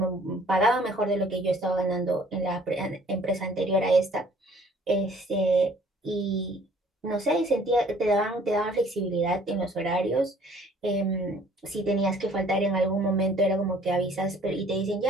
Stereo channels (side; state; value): both; normal; correlation 0.57